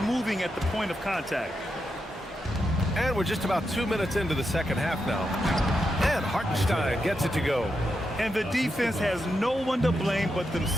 moving at the point of contact. And we're just about 2 minutes into the second half now. And Hartenstein gets it to go. And the defense has no one to blame but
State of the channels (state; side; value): normal; both; correlation 0.85